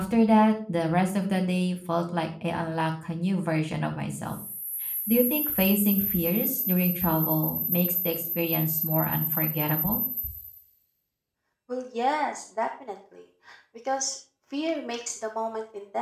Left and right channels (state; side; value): identical; both; correlation 1.00